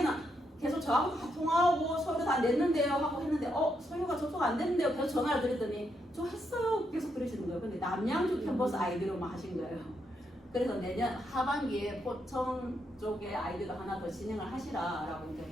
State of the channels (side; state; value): both; normal; correlation 0.79